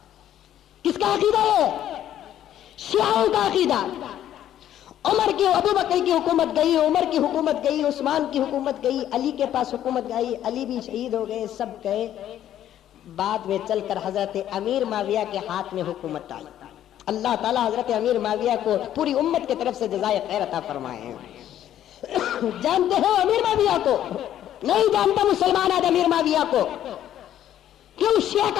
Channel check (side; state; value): right; quieter; 11.4 dB